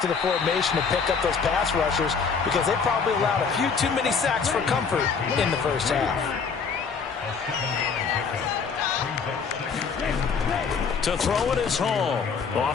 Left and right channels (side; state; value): right; quieter; 5.6 dB